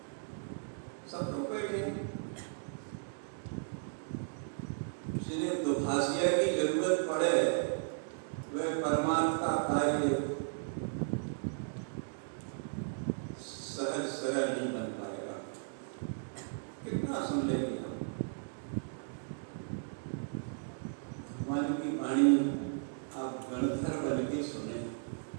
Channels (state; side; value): silent; left; digital silence